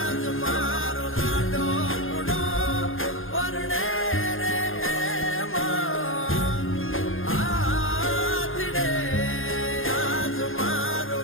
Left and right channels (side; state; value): right; late; 0.59 ms